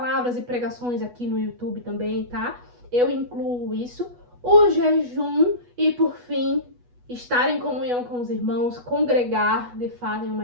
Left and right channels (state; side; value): late; left; 8.2 ms